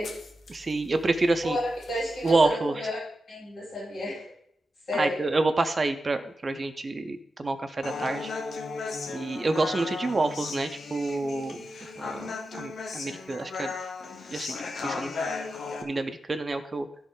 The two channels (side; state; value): both; normal; correlation 0.91